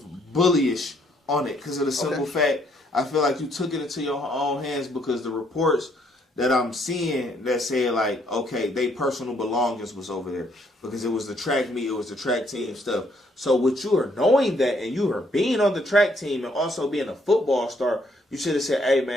bullyish on it because of the simple fact. I feel like you took it into your own hands because the reports that I'm seeing that say like, okay, they personal belongings was over there because it was the track meet, it was the track team stuff. So with you are knowing that and you are being on the track team and also being a football star, you should have said, hey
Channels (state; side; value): normal; both; correlation 0.69